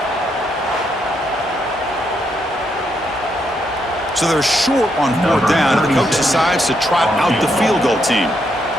So they're short on fourth down, and the coach decides to trot out the field goal team.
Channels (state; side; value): normal; both; correlation 0.78